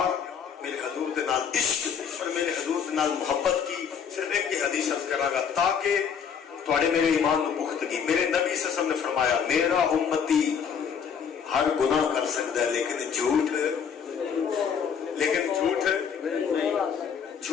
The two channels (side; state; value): right; quieter; 7.1 dB